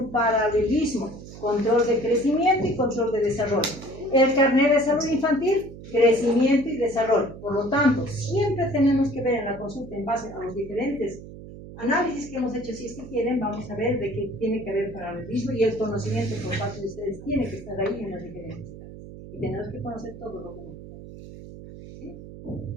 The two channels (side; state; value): right; noise; hum, 15 dB below the sound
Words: paralelismo, control de crecimiento y control de desarrollo. El carnet de salud infantil, crecimiento y desarrollo. Por lo tanto, siempre tenemos que ver en la consulta, en base a los diferentes análisis que hemos hecho, si es que quieren, vamos a ver de que tiene que haber paralelismo y el conocimiento por parte de ustedes tiene que estar ahí en las diferentes etapas. Y tenemos que conocer todo lo que necesitamos. ¿Sí?